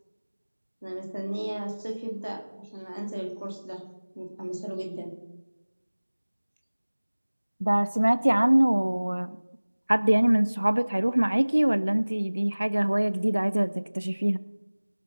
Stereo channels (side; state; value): both; inverted; correlation -1.00